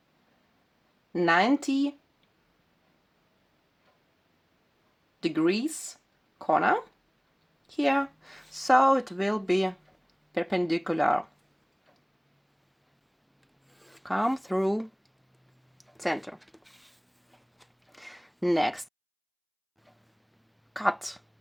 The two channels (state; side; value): identical; both; correlation 1.00